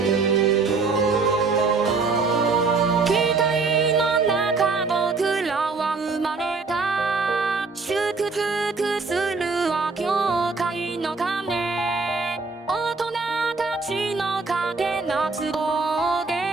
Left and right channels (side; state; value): left; quieter; 4.3 dB